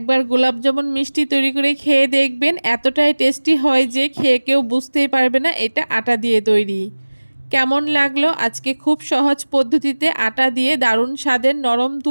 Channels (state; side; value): inverted; both; correlation -1.00